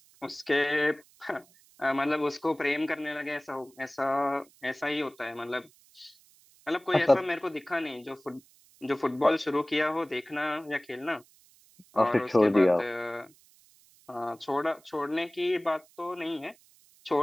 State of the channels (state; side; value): noise; right; hiss, 29 dB below the sound